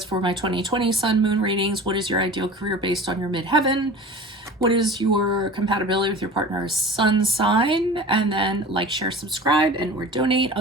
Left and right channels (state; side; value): normal; both; correlation 0.38